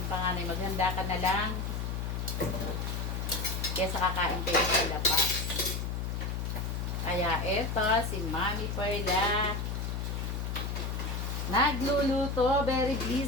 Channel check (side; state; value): left; noise; hum, 2 dB below the sound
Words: panganay, maghanda ka na lang kesa kakain kayo sa labas. Kaya eto, si Mami Perla, nagluluto, very